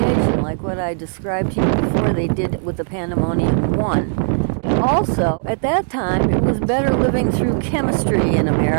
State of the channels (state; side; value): silent; left; digital silence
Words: like what I described to you before they did with the Pandemonium 1. Also, at that time, it was better living through chemistry in